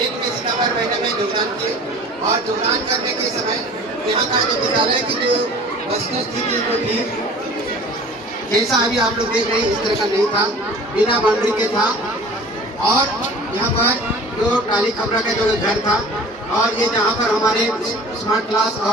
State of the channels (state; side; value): normal; both; correlation 0.44